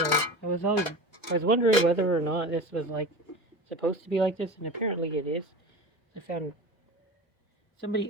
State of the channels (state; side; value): normal; both; correlation 0.31